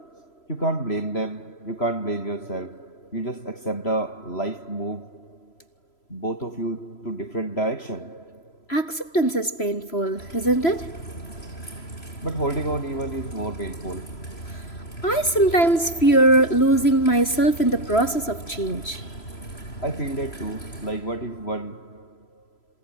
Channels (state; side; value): late; right; 3.0 ms